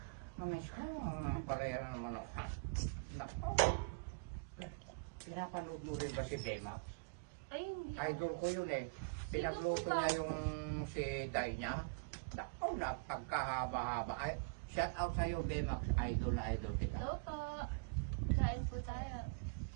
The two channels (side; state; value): left; quieter; 34.1 dB